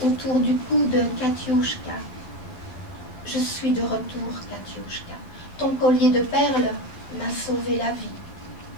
autour du cou de Katiouchka. « Je suis de retour, Katiouchka. Ton collier de perles m'a sauvé la vie. »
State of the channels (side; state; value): right; late; 12 ms